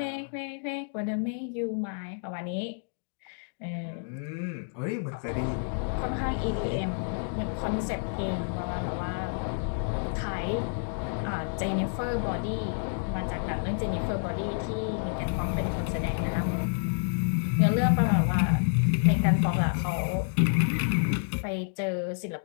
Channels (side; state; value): right; silent; digital silence